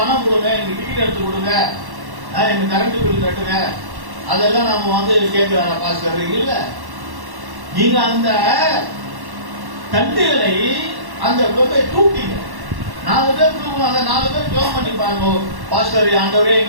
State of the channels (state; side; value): late; left; 1.1 ms